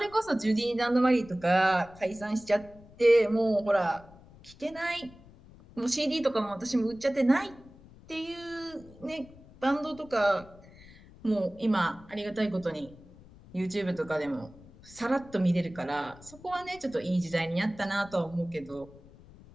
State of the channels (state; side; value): noise; left; rumble, 22 dB below the sound